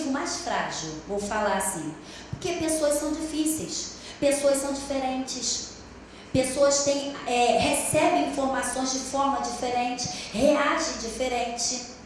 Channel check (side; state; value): both; identical; correlation 1.00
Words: mais frágil, vou falar assim. Porque pessoas são difíceis, pessoas são diferentes, pessoas recebem informações de forma diferente, reagem diferente.